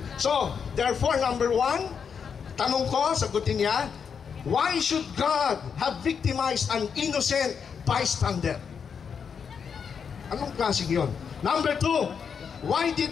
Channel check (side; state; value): right; quieter; 6.7 dB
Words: So, therefore, number 1, tanong ko, sagutin niya, why should God have victimized an innocent bystander? Anong klaseng yun? Number 2, why did